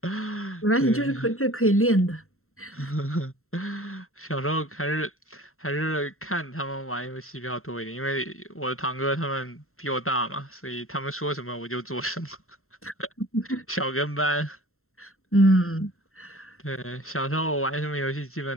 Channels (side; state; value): right; late; 0.62 ms